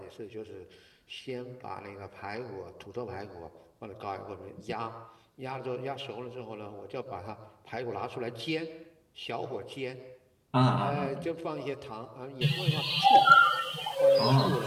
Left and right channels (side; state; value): both; identical; correlation 1.00